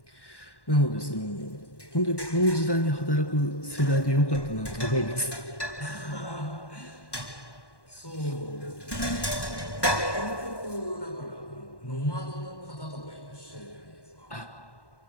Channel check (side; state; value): right; late; 1.1 ms